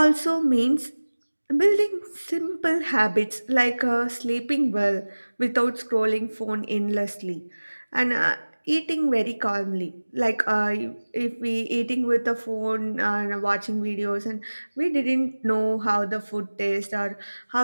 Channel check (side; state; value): both; inverted; correlation -1.00